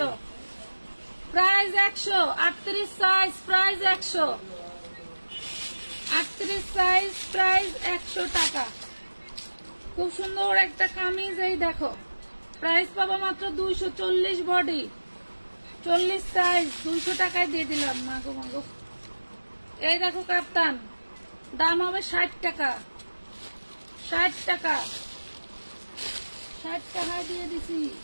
price 100, 38 size, price 100, 38 size, price 100 টাকা। খুব সুন্দর একটা কামিজ, এই দেখো, প্রাইস পাবা মাত্র 240, বডি 40 সাইজ, 200 টাকায় দিয়ে দিলাম। মাগো মাগো, এই দেখো কাপ্তান, দাম হবে 60 টাকা, 60 টাকা, 60 টাকায় দিয়ে দিছি।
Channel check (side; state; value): both; inverted; correlation -1.00